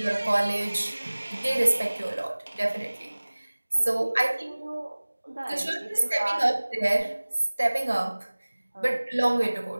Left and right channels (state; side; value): inverted; both; correlation -1.00